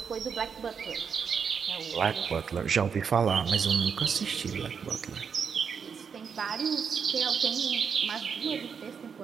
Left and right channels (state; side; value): quieter; left; 6.5 dB